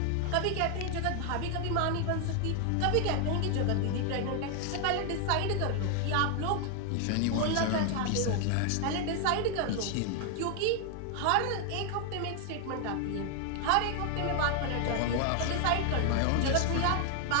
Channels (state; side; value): different; both; correlation 0.00